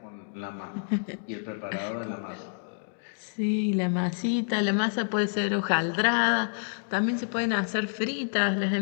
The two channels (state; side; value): silent; right; digital silence